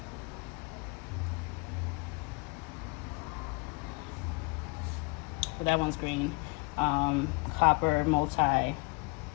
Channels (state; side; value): quieter; right; 29.6 dB